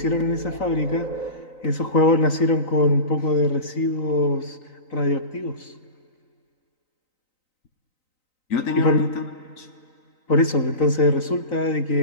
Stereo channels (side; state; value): right; late; 3.9 ms